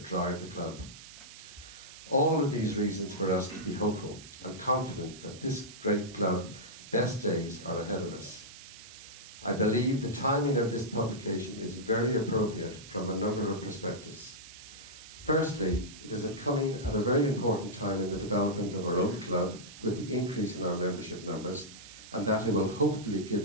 drive the club. All of these reasons for us to be hopeful and confident that this great club best days are ahead of us. I believe the timing of this publication is very appropriate from a number of perspectives. Firstly, it is coming at a very important time in the development of our own club with the increase in our membership numbers, and that it will hopefully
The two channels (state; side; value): noise; right; hiss, 16 dB below the sound